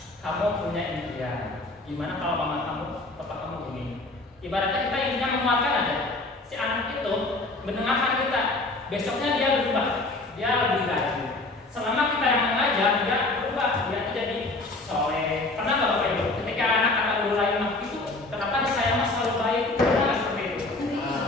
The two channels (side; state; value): right; quieter; 3.0 dB